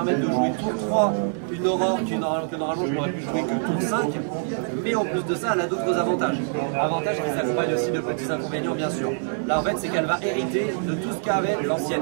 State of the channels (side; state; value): left; silent; digital silence